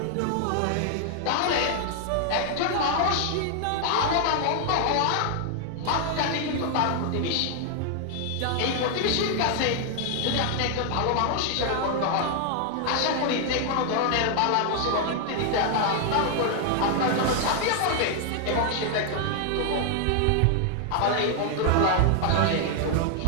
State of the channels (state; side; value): different; both; correlation 0.00